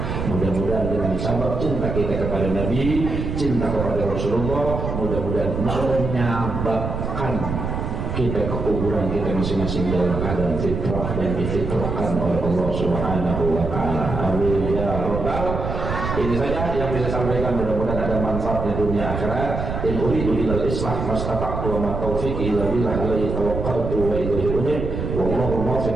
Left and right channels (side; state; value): right; noise; rumble, 4 dB below the sound